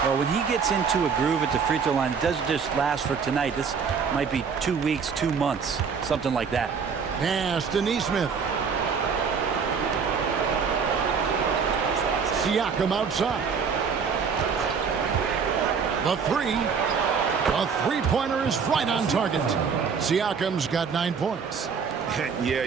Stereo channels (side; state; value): left; quieter; 6.0 dB